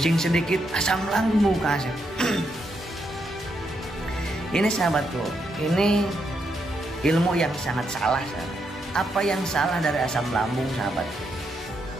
sedikit, asam lambung Kang Asep. Ini sahabatku, ini ilmu yang sangat salah sahabat. Apa yang salah dari asam lambung sahabatku?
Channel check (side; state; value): both; normal; correlation 0.80